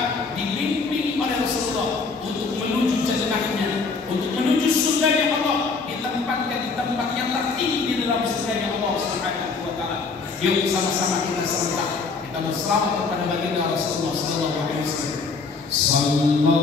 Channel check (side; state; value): right; quieter; 4.5 dB